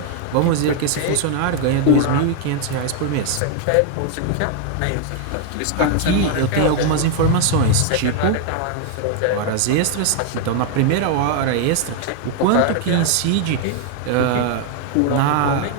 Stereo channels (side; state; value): both; different; correlation 0.00